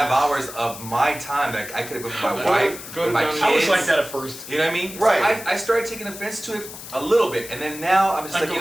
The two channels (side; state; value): left; noise; hiss, 13 dB below the sound